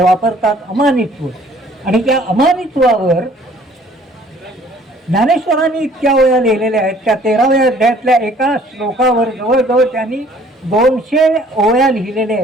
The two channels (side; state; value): both; normal; correlation 0.57